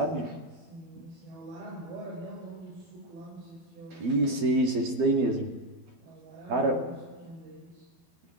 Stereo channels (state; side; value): late; left; 12 ms